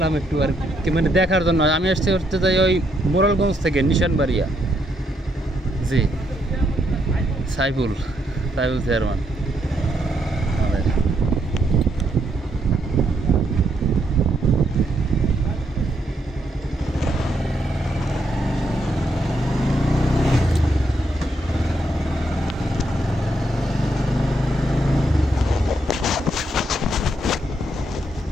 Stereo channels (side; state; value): both; normal; correlation 0.76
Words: একটু আর কি মানে দেখার জন্য। আমি আসতে করতে যাই ওই মোরালগঞ্জ থেকে নিশানবাড়িয়া। জি, সাইফুল চেয়ারম্যান।